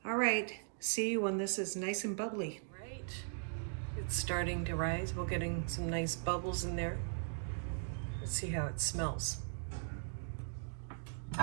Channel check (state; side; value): silent; left; digital silence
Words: All right, see you when this is nice and bubbly. Right, it's starting to rise. We're getting some nice bubbles in there. Let's see how it smells. So